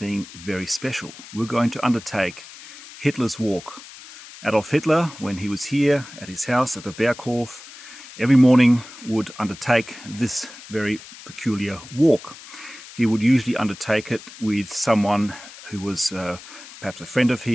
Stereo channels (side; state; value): left; noise; hiss, 17 dB below the sound